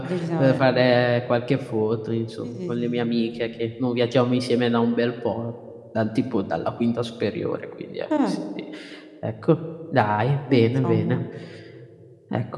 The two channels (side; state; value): both; identical; correlation 1.00